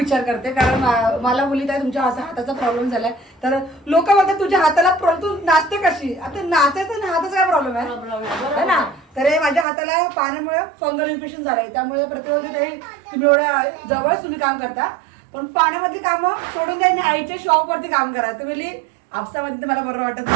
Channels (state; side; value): drops out; left; at 9.7 s